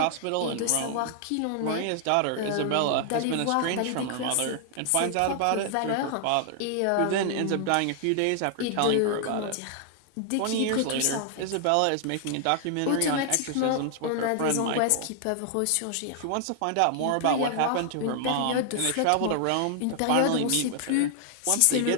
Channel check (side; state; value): both; different; correlation 0.00